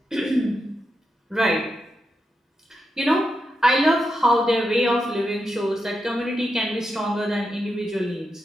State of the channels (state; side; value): normal; both; correlation 0.86